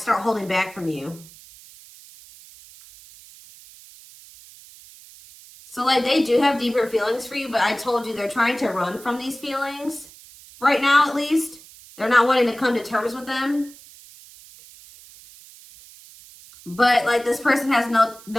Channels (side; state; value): right; noise; hiss, 21 dB below the sound